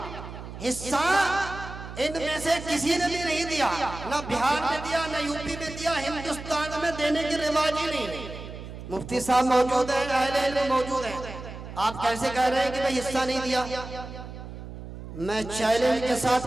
हिस्सा इनमें से किसी ने भी नहीं दिया, ना बिहार में दिया, ना यूपी में दिया, हिंदुस्तान में देने की रिवाज ही नहीं। मुफ्ती साहब मौजूद है, अहले इल्म मौजूद है, आप कैसे कह रहे हैं कि भाई हिस्सा नहीं दिया? मैं चैलेंज के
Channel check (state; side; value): noise; right; hum, 11 dB below the sound